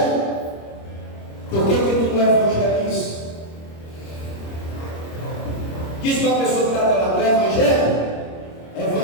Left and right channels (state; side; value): late; right; 25 ms